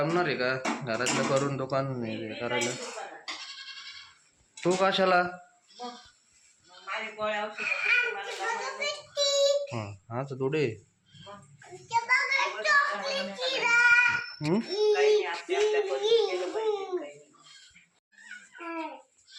आहे का घरातलं करून दुकान नाही करायला? तू कशाला? हा तर थोडे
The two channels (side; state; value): both; identical; correlation 1.00